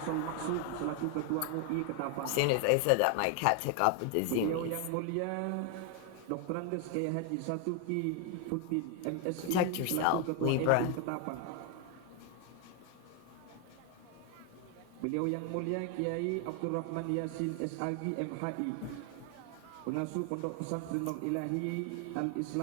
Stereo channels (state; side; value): different; both; correlation 0.01